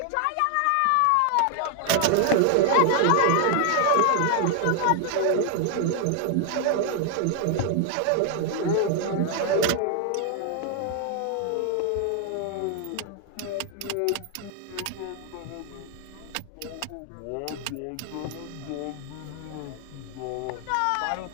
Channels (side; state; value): both; different; correlation 0.00